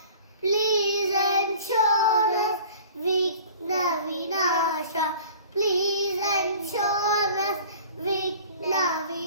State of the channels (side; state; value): both; inverted; correlation -0.45